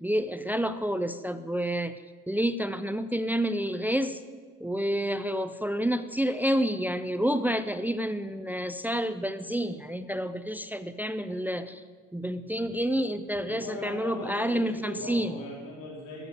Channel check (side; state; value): both; normal; correlation 0.81